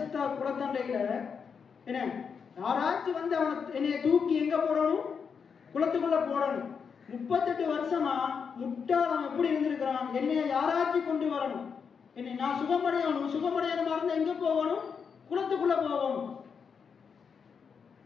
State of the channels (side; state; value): right; quieter; 6.2 dB